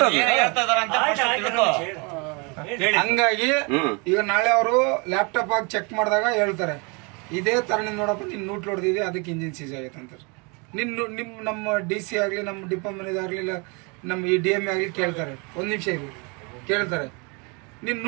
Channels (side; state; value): left; quieter; 31.1 dB